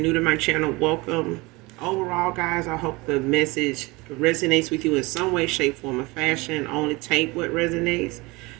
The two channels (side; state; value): left; quieter; 23.8 dB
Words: to my channel, welcome. Overall, guys, I hope the message resonates with you in some way, shape, form, or fashion. Only take what resonates